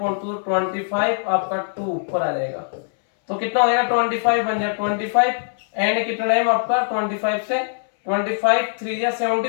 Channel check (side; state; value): right; silent; 64 dB below the other